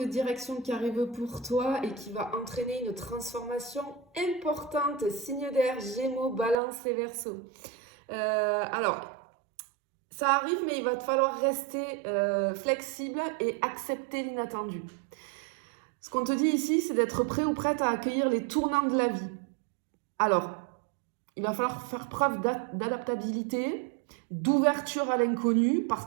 direction qui arrive pour toi et qui va entraîner une transformation importante. Signe d'air, Gémeaux, Balance et Verseau. Alors, ça arrive, mais il va te falloir rester flexible et accepter l'inattendu. Ce qu'on te dit ici, c'est d'être prêt ou prête à accueillir les tournants de la vie. Alors, il va falloir faire preuve d'adaptabilité, d'ouverture à l'inconnu, parce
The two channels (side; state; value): left; drops out; at 6.6 s